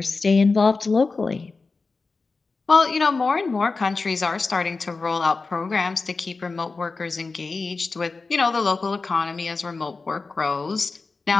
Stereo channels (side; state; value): right; quieter; 4.0 dB